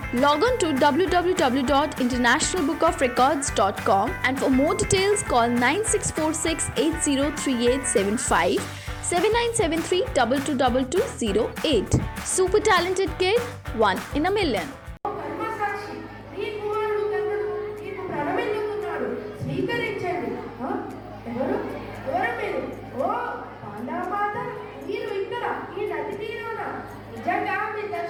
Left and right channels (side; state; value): both; identical; correlation 1.00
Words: Log on to www.internationalbookofrecords.com and for more details call 9646 803875 7973 222208. Super Talented Kid, one in a million. స్వీకరించండి. ఎవరు మీరు? ఓ పాండవమాత, మీరు ఇక్కడ ఈ నది తీరాన. నిజంగా మీ